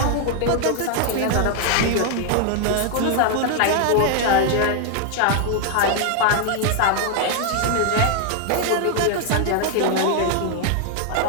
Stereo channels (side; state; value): both; different; correlation 0.00